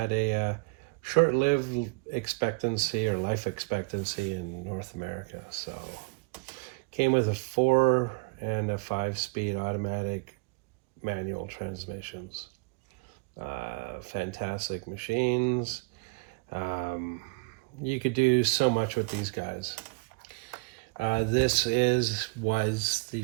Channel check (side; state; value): left; quieter; 30.5 dB